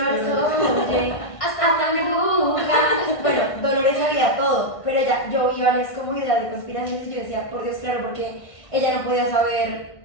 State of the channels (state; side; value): late; right; 1.6 ms